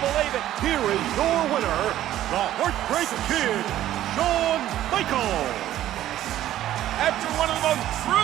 it. Here is your winner, the Heartbreak Kid, Shawn Michaels. After one of the most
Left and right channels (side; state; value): left; quieter; 13.0 dB